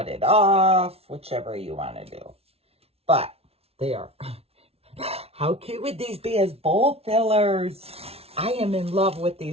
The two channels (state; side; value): late; left; 0.29 ms